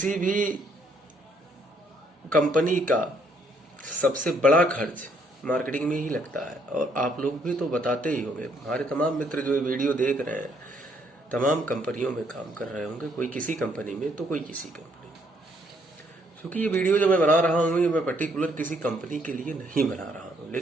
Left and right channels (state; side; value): normal; both; correlation 0.69